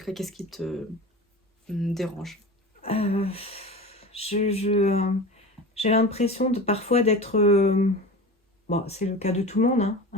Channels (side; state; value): both; normal; correlation 0.32